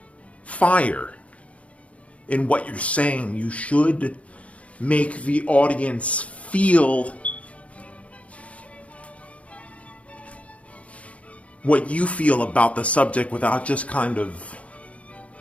fire in what you're saying. You should make the audience feel what you feel about the subject without just kind of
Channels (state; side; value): late; right; 0.064 ms